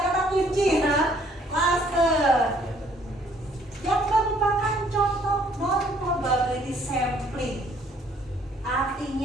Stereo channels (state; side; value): normal; both; correlation 0.62